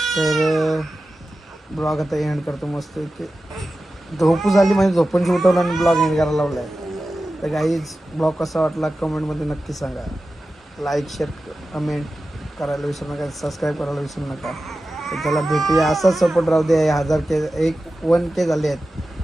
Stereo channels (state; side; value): normal; both; correlation 0.94